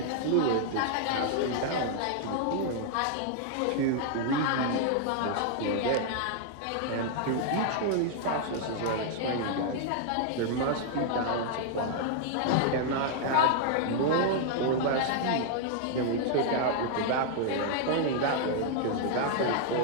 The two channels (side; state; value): both; different; correlation -0.01